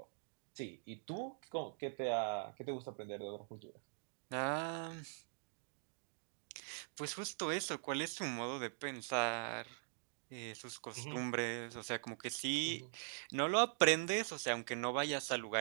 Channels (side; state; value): left; silent; digital silence